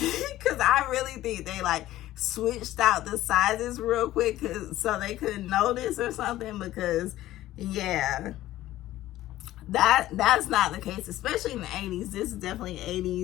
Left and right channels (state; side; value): quieter; right; 14.9 dB